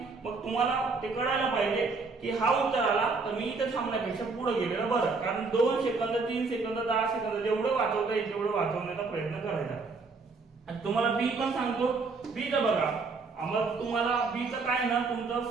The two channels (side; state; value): left; quieter; 4.2 dB